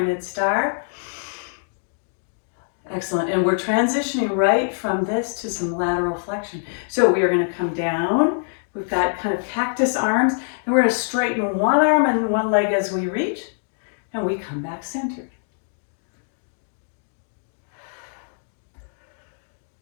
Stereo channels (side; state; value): right; silent; digital silence